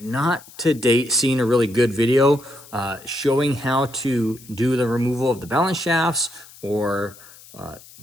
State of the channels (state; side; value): noise; left; hiss, 21 dB below the sound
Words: not to date seen a really good video showing how to do the removal of the balance shafts or